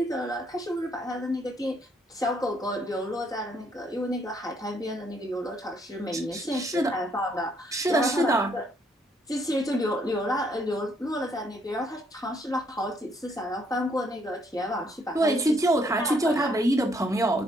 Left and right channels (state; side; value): normal; both; correlation 0.69